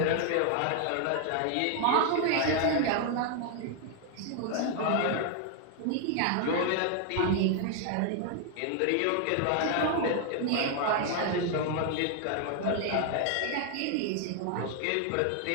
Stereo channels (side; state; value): both; different; correlation 0.00